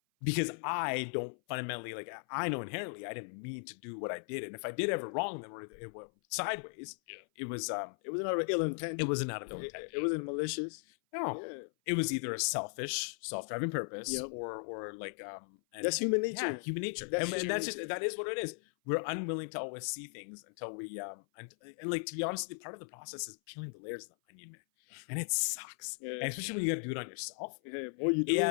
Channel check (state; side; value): silent; right; 53 dB below the other